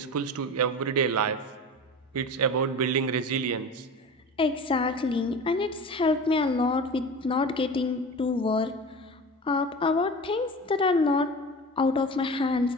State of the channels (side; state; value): both; normal; correlation 0.33